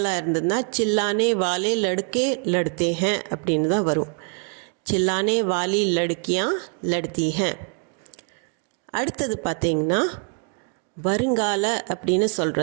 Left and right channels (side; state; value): left; quieter; 38.6 dB